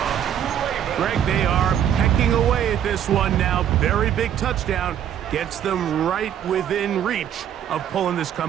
Greg, they are pecking away at this one now. Very big touchdown. Gets them right within reach of pulling this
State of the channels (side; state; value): left; quieter; 9.9 dB